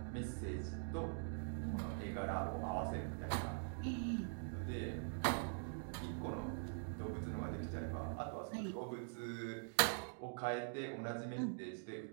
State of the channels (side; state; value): left; silent; digital silence